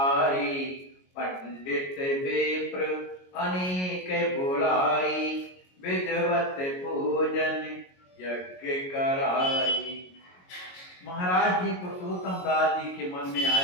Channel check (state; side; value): late; right; 22 ms